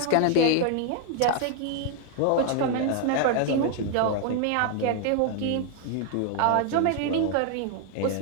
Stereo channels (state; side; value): different; both; correlation 0.00